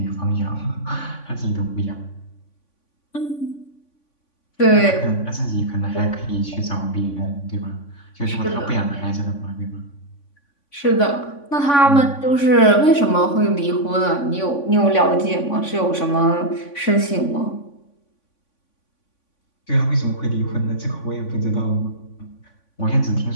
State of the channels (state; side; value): late; right; 3.5 ms